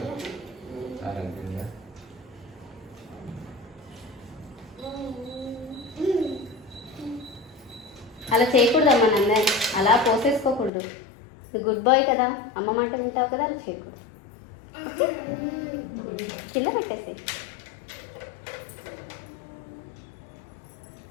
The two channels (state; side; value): drops out; right; at 10.7 s